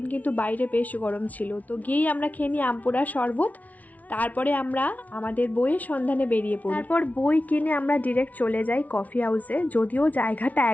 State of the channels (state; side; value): late; right; 0.072 ms